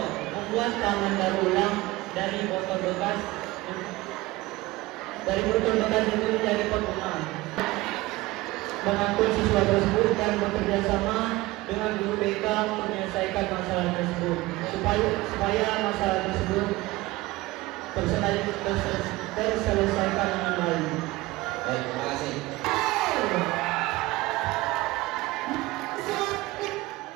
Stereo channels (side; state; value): left; quieter; 19.8 dB